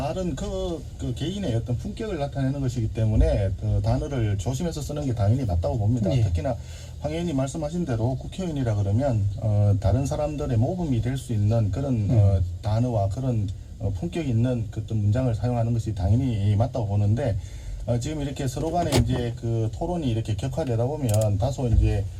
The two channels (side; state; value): both; identical; correlation 1.00